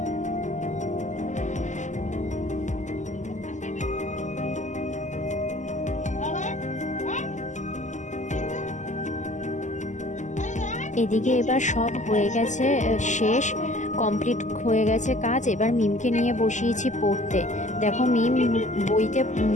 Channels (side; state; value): right; late; 0.35 ms